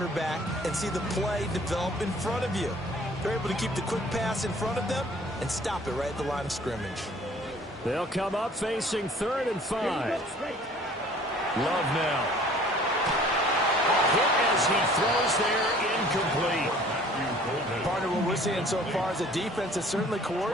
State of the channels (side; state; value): both; normal; correlation 0.52